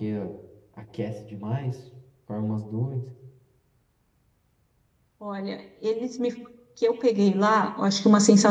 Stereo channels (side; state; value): both; identical; correlation 1.00